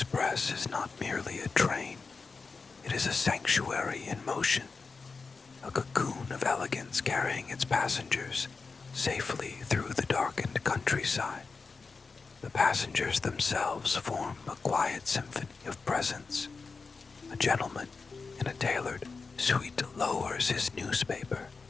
is not merely a train. It is a sanctuary in motion, a cocoon of elegance carrying its passengers safely through the darkened countryside. The passengers themselves form a quiet symphony of presence. A gentleman in a tailored suit lowers his newspaper,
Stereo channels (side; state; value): right; quieter; 4.5 dB